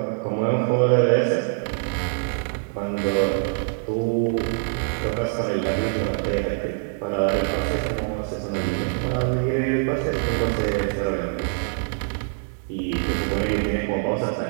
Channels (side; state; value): left; silent; 59 dB below the other